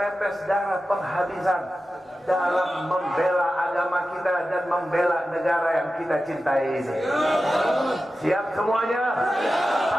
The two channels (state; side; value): normal; both; correlation 0.93